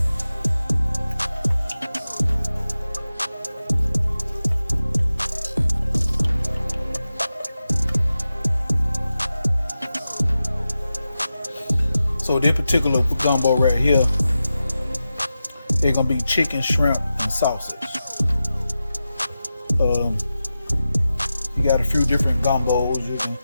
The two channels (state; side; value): inverted; both; correlation -0.92